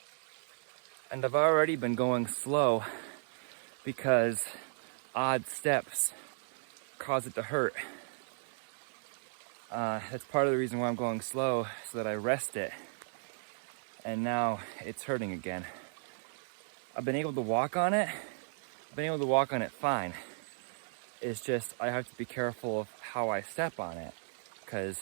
And I've already been going slow because odd steps cause it to hurt. That's part of the reason why I'm going slow, so that I rest it. And now it's hurting again. I've been able to walk on it. Fine. It's just I have to be careful of how I step on it, because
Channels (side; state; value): left; silent; digital silence